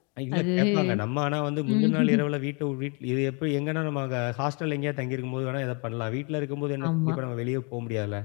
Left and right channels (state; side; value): quieter; right; 33.5 dB